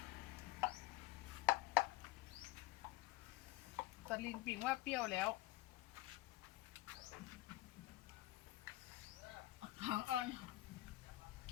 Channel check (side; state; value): right; quieter; 16.0 dB